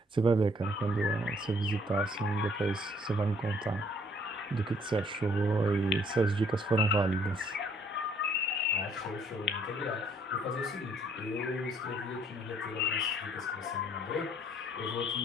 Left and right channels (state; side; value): normal; both; correlation 0.63